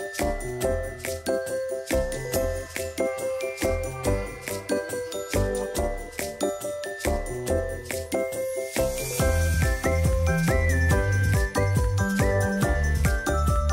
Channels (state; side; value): identical; both; correlation 1.00